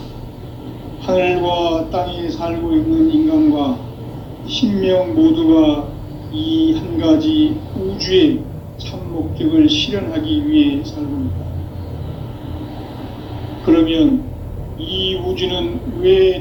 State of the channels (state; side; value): identical; both; correlation 1.00